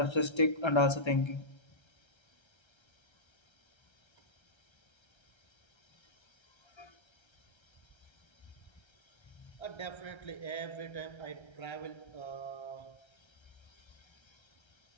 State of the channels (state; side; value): late; right; 1.3 ms